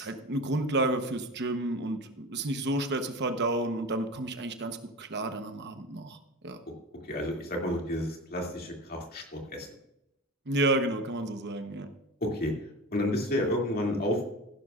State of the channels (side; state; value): both; normal; correlation 0.31